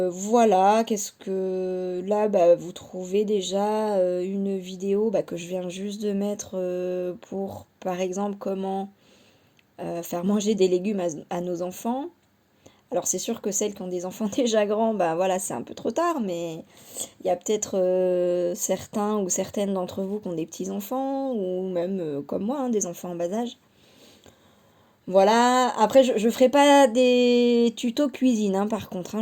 qu'est-ce que... Là, bah, vous trouvez déjà une vidéo bah, que je viens juste de mettre pour, par exemple, comment faire manger des légumes à nos enfants. Alors c'est sûr que celles qui ont des enfants déjà grands, bah voilà, c'est un peu trop tard, mais il y a peut-être certains ou certaines d'entre vous qui ont des petits-enfants, ou même comme moi, hein, des enfants en bas âge. Voilà, après je ferai pas des tutos cuisine, hein, par contre, hein,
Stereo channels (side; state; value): both; identical; correlation 1.00